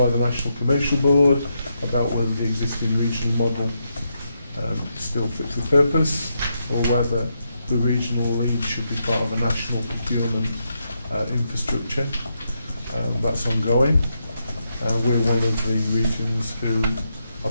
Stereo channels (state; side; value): inverted; both; correlation -0.82